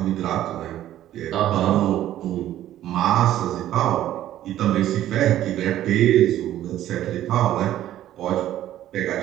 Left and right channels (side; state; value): left; quieter; 12.8 dB